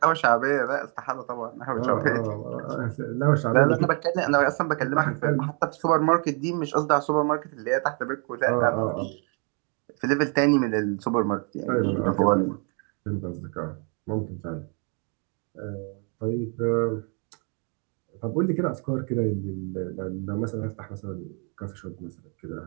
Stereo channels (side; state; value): left; quieter; 37.2 dB